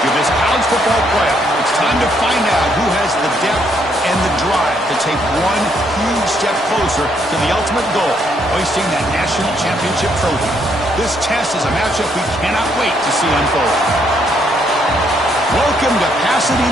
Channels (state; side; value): normal; both; correlation 0.72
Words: of this college football playoff. It's time to find out who has the depth and the drive to take one huge step closer to the ultimate goal, hoisting that national championship trophy. This test is a matchup we cannot wait to see unfold. Welcome to